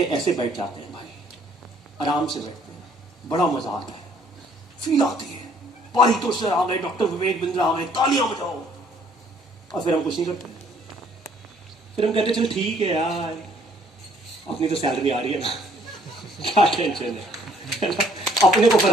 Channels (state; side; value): normal; both; correlation 0.62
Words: ऐसे बैठ जाते हैं भाई, आराम से बैठते हैं, बड़ा मजा आता है, फील आती है, पारितोष सर आ गए, डॉक्टर विवेक बिंद्रा आ गए, तालियां बजाओ, और फिर हम कुछ नहीं करते। फिर हम कहते चल ठीक है यार, अपनी तो सैलरी आ रही है ना, क्या टेंशन है ना? अपने को